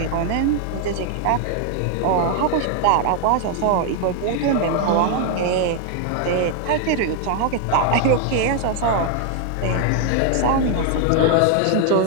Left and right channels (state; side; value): different; both; correlation 0.00